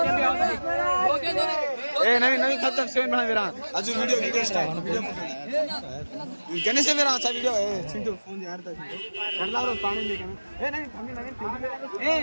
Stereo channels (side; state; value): both; inverted; correlation -1.00